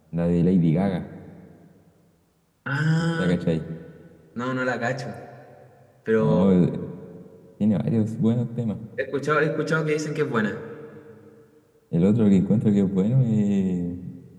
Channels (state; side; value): identical; both; correlation 1.00